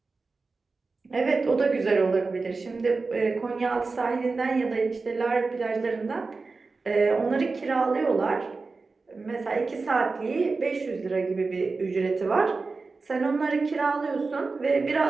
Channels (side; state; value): left; quieter; 4.0 dB